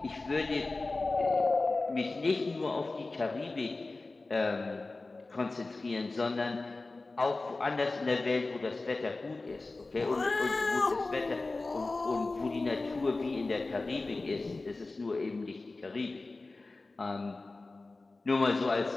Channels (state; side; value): quieter; right; 3.4 dB